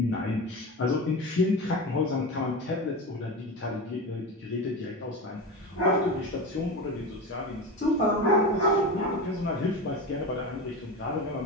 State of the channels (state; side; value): normal; both; correlation 0.24